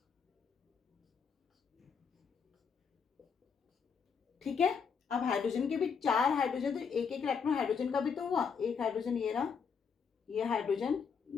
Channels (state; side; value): quieter; right; 6.2 dB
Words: ठीक है। अब हाइड्रोजन के भी 4 हाइड्रोजन, तो एक एक इलेक्ट्रॉन हाइड्रोजन का भी तो हुआ, एक हाइड्रोजन ये रहा, ये हाइड्रोजन,